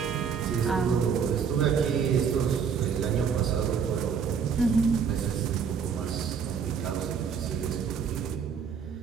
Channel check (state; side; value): quieter; left; 6.7 dB